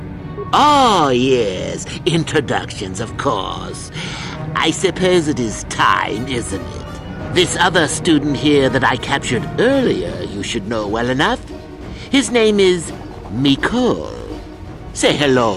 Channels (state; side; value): identical; both; correlation 1.00